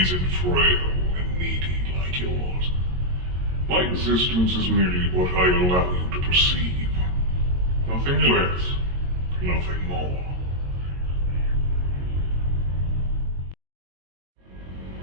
isn't frail and needy like yours. My existence is merely what I allow you to perceive. Nothing less, nothing more.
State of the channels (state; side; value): late; left; 22 ms